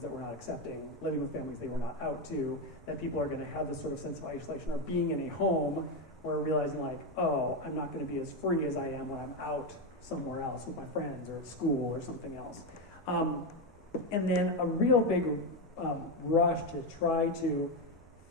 that were not accepting, living with families they were not out to, that people are going to have this sort of sense of isolation, or being in a home where realizing oh, I'm not going to be as free as I am when I'm out somewhere else with my friends or at school or something else. And then a real big rush to try to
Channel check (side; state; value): both; normal; correlation 0.09